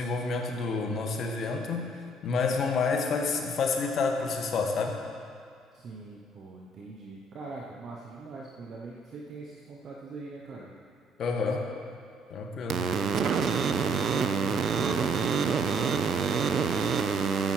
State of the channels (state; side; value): normal; both; correlation 0.64